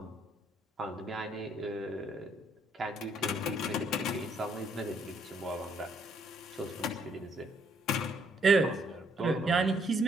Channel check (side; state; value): both; normal; correlation 0.69